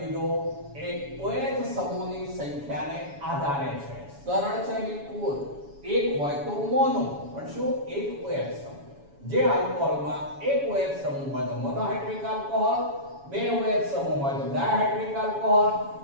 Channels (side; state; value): left; late; 7.1 ms